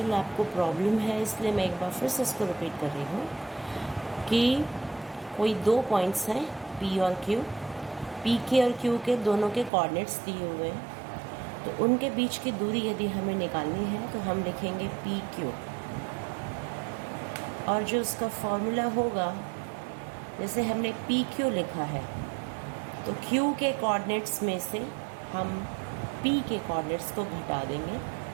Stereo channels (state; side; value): drops out; left; at 9.7 s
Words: आपको प्रॉब्लम है, इसलिए मैं एक बार फिर से इसको रिपीट कर रही हूँ कि कोई दो पॉइंट्स हैं P और Q. P के और Q के दोनों के कोऑर्डिनेट्स दिए हुए हैं. तो उनके बीच की दूरी यदि हमें निकालनी है तो हम लिखेंगे PQ और जो उसका फॉर्मूला होगा, जैसे हमने PQ लिखा है तो Q के कोऑर्डिनेट्स में से हम P के कोऑर्डिनेट्स को घटा देंगे,